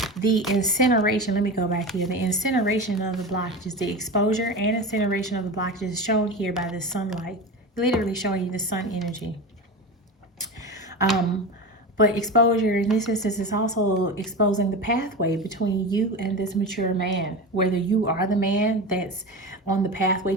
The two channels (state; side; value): normal; both; correlation 0.25